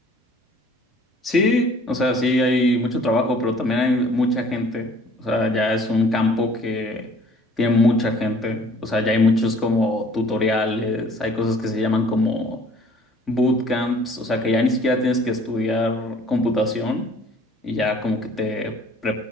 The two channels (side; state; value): both; normal; correlation 0.54